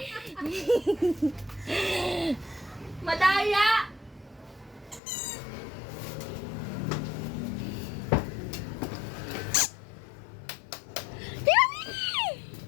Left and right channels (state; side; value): drops out; right; at 5.0 s